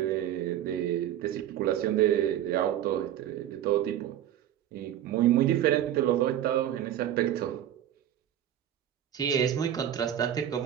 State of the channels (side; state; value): left; quieter; 11.3 dB